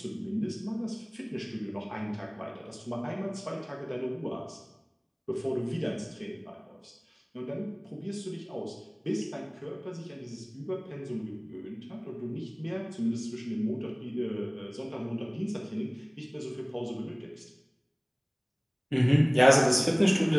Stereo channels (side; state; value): both; identical; correlation 1.00